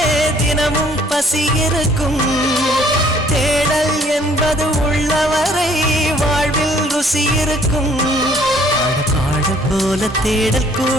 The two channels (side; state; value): both; normal; correlation 0.60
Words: தினமும் பசி இருக்கும். தேடல் என்பது உள்ளவரை வாழ்வில் ருசி இருக்கும். பாட போல தேடல்